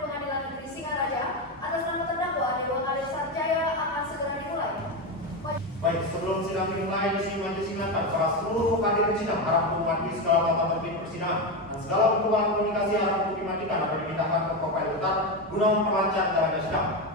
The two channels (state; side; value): normal; both; correlation 0.13